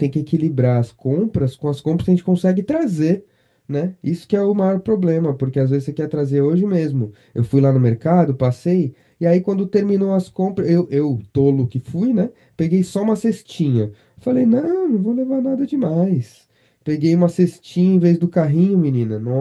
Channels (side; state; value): both; identical; correlation 1.00